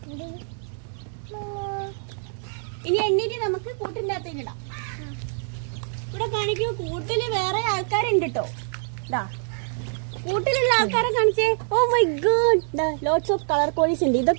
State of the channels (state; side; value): silent; left; digital silence